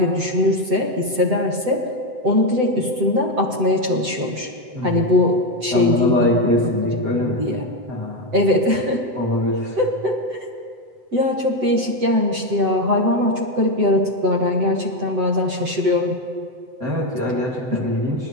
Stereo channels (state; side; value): late; left; 7.8 ms